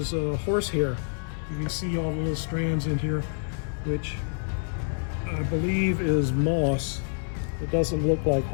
horse hair. You can see all the little strands in here, which I believe is moss. It doesn't look like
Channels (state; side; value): silent; right; digital silence